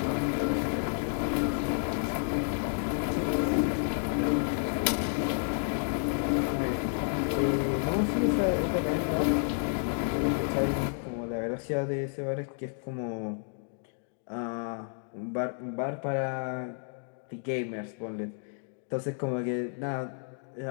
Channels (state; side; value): silent; right; 57 dB below the other